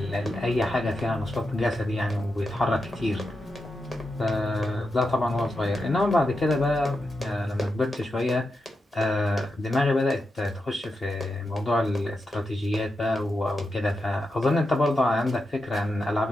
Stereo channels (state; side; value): normal; both; correlation 0.88